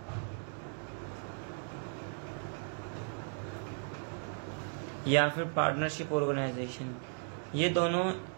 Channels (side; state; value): left; silent; 54 dB below the other